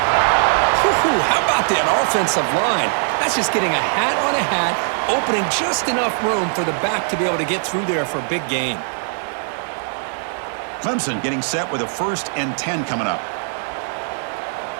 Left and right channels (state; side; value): silent; left; 59 dB below the other